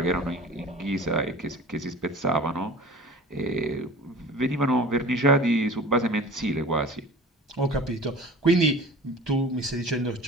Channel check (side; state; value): both; normal; correlation 0.40